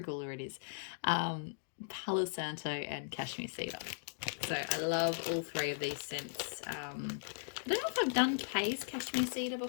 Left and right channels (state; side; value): silent; right; digital silence